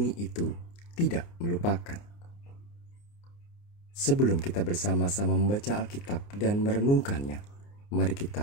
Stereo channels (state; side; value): late; right; 29 ms